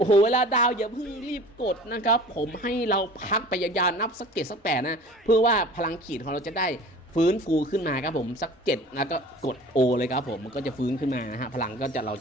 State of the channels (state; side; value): normal; both; correlation 0.43